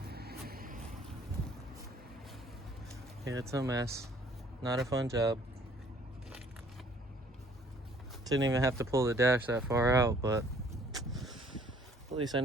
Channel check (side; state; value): both; normal; correlation 0.58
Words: Yeah, it's a mess. Not a fun job. Didn't even have to pull the dash that far out, but at least I